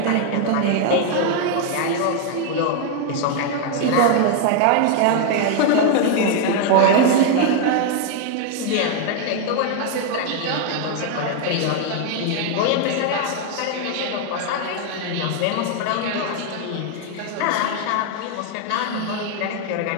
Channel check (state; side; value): different; both; correlation 0.00